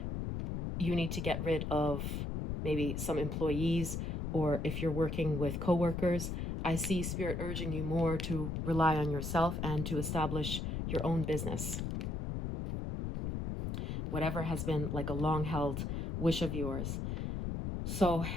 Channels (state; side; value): noise; left; rumble, 2 dB below the sound